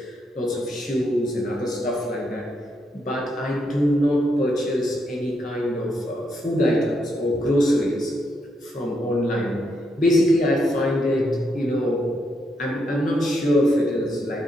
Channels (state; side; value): normal; both; correlation 0.79